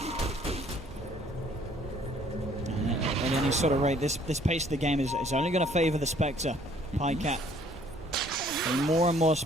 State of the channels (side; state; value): both; normal; correlation 0.60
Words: At any sort of rate, this pace of the game is only going to favor the Spectre. Pycat. And more